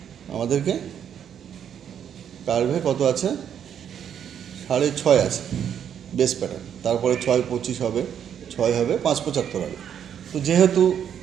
আমাদেরকে কার্ভে কত আছে, 6.5 আছে বেস প্যাটার্ন, তারপরে 6.25 হবে, 6 হবে, 5.75 হবে। তো যেহেতু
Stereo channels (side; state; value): left; quieter; 8.9 dB